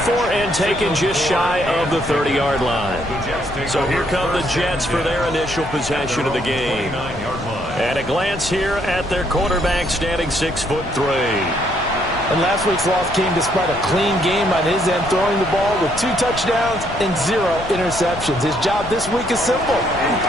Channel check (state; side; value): noise; left; rumble, 12 dB below the sound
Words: and taken just shy of the 30-yard line. So here come the Jets for their initial possession of the game. And a glance here at their quarterback standing 6'3". And last week's loss came despite a clean game on his end, throwing the ball with 2 touchdowns and 0 interceptions. His job this week is simple.